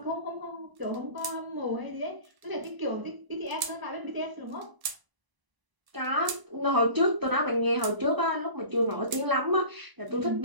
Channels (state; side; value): late; left; 1.0 ms